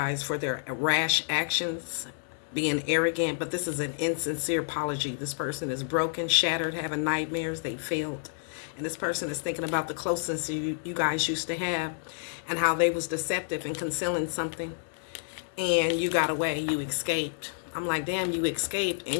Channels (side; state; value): right; silent; 58 dB below the other